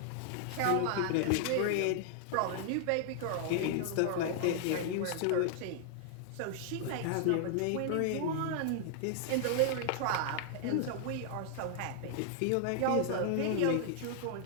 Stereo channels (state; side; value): different; both; correlation 0.00